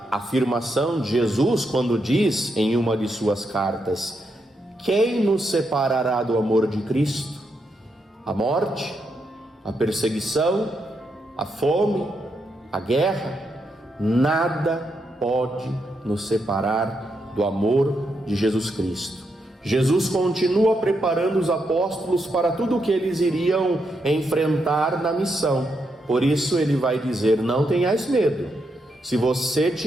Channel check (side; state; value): both; normal; correlation 0.82